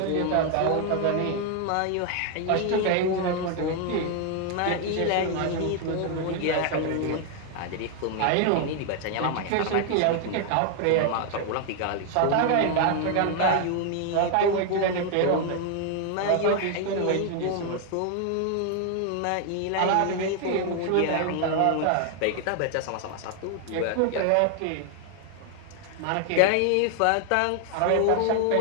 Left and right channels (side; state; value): both; different; correlation 0.00